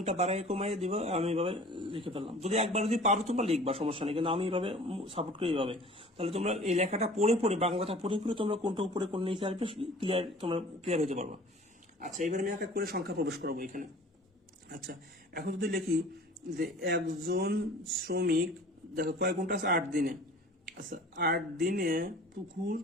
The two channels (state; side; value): normal; both; correlation 0.46